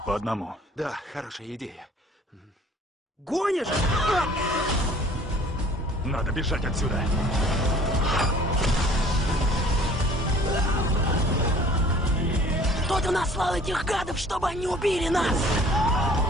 по одному. Да, хорошая идея. Гонишь? Надо бежать отсюда. Кто-то наслал этих гадов, чтобы они убили нас!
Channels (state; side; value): normal; both; correlation 0.51